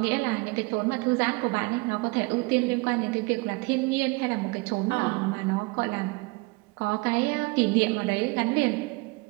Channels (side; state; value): left; quieter; 25.9 dB